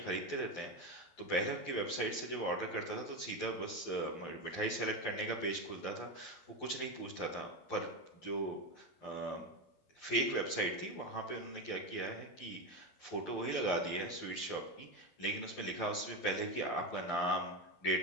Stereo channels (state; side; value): late; right; 11 ms